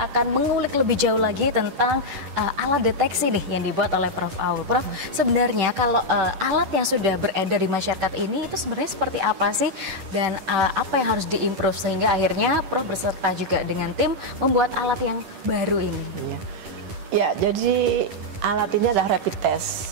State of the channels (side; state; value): left; late; 10 ms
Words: akan mengulik lebih jauh lagi tentang alat deteksi nih yang dibuat oleh Prof. Aul. Prof, sebenarnya kalau alat yang sudah beredar di masyarakat ini itu sebenarnya seperti apa sih, dan apa yang harus diimprove sehingga akhirnya Prof berserta juga dengan tim membuat alat yang baru ini? Ya, jadi alat ini adalah rapid